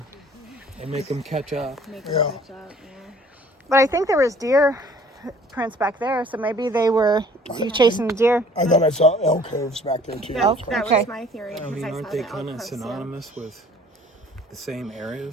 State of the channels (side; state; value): both; normal; correlation 0.53